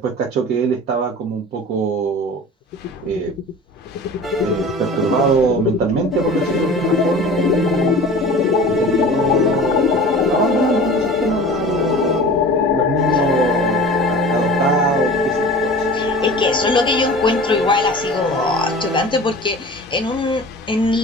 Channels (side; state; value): both; normal; correlation 0.39